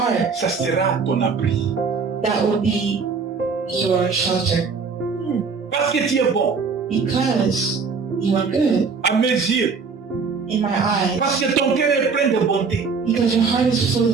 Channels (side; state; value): left; quieter; 5.1 dB